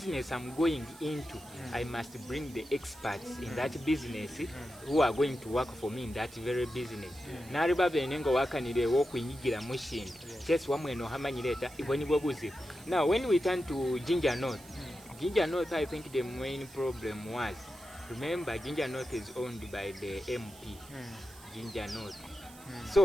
I'm going into, I must bring the experts in that business who are going to work for me in that very business. Nari babe nengo wakanire wo kunyigira mushinga. Just wamwe no hamanyireta iboni bobuzi. Now when we turn to Ginger North, I think the main problem was, remember Ginger North is owned by the MP. Ginger North.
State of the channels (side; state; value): right; noise; hiss, 21 dB below the sound